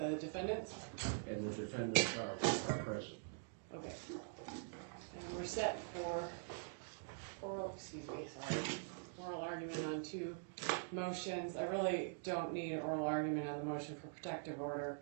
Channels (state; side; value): silent; left; digital silence